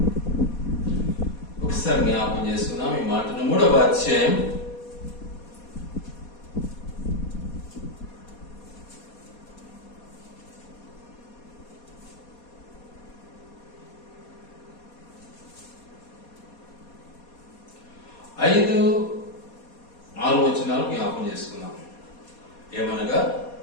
3వ అధ్యాయం 5-6 వచనాలు జ్ఞాపకం చేసుకున్నాం. ఏమనగా,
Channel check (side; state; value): right; late; 4.2 ms